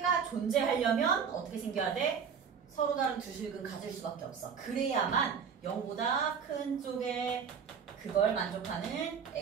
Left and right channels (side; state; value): left; quieter; 6.9 dB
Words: 존재하려면 어떻게 생겨야 돼? 서로 다른 두 식은 가질 수밖에 없어. 그래야만 0보다 큰 쪽에 그걸 만족하는